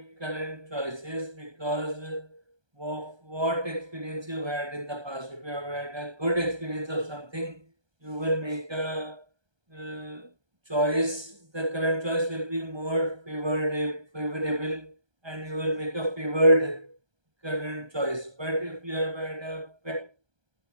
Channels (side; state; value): left; late; 1.3 ms